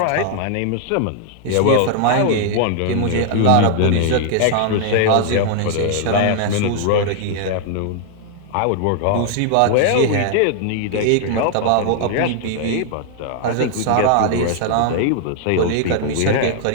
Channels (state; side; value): different; both; correlation -0.01